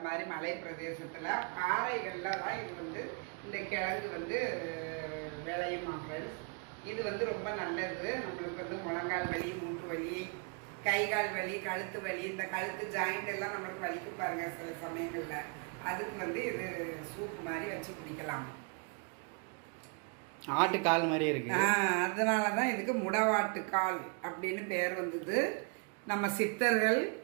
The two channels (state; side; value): quieter; left; 36.0 dB